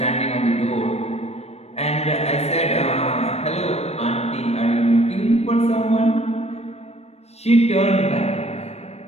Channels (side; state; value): right; late; 0.31 ms